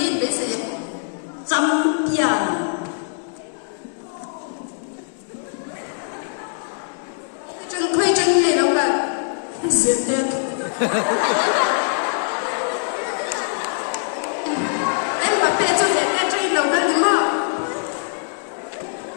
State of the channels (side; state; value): right; silent; digital silence